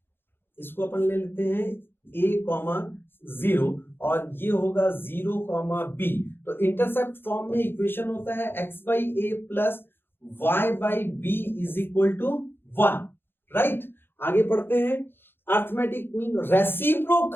इसको अपन ले लेते हैं a,0 और ये होगा 0,b। तो इंटरसेप्ट फॉर्म में इक्वेशन होता है x/a plus y/b is equal to 1, right. आगे पढ़ते हैं, arithmetic mean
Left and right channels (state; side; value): late; right; 0.10 ms